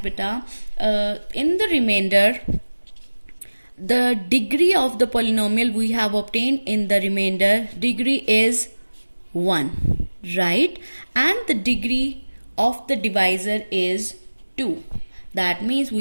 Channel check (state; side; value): inverted; both; correlation -1.00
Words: beta, in the remainder the degree of the polynomial we have obtained in the remainder degree is 1, right? And the degree of the divisor is 2. That means